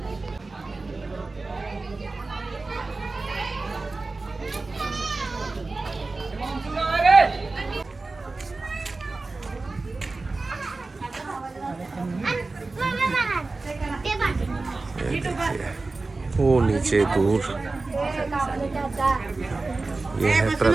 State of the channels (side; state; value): left; quieter; 3.5 dB